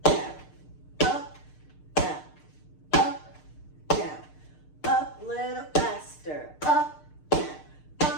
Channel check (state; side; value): late; right; 6.6 ms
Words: down. Up, down. Up, down. Up, little faster. Up, down.